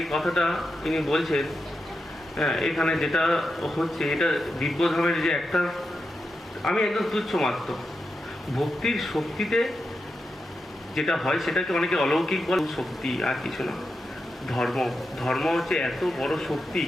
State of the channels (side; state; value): both; normal; correlation 0.88